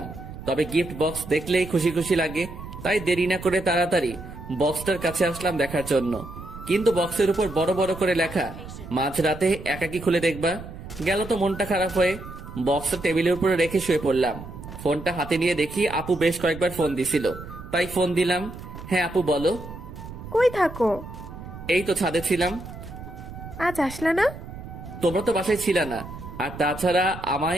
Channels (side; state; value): right; noise; rumble, 12 dB below the sound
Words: তবে গিফট বক্স দেখলেই খুশি খুশি লাগে, তাই দেরি না করে তাড়াতাড়ি বক্সটার কাছে আসলাম দেখার জন্য। কিন্তু বক্সের উপর বড় বড় করে লেখা, মাঝরাতে একাকি খুলে দেখবা। গেল তো মনটা খারাপ হয়ে বক্সটা টেবিলের উপরে রেখে শুয়ে পড়লাম। ফোনটা হাতে নিয়ে দেখি আপু বেশ কয়েকবার ফোন দিছিল, তাই ফোন দিলাম। হ্যাঁ আপু বলো। কই থাকো? এই তো ছাদে ছিলাম। আজ আসলা না? তোমরা তো বাসায় ছিল না, আর তাছাড়া আমায়